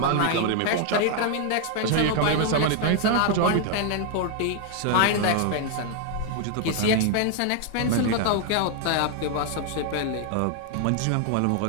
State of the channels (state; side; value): different; both; correlation 0.00